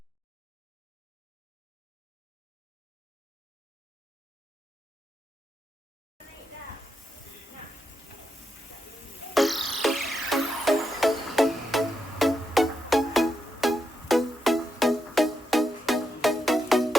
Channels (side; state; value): both; normal; correlation 0.84